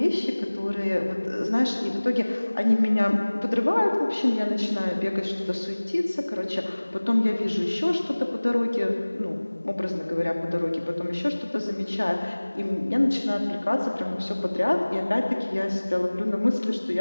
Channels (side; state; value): both; inverted; correlation -1.00